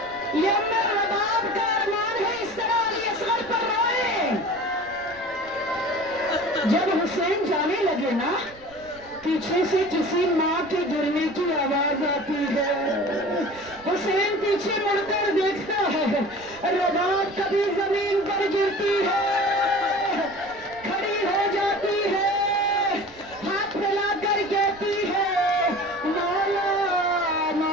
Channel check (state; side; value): noise; right; rumble, 24 dB below the sound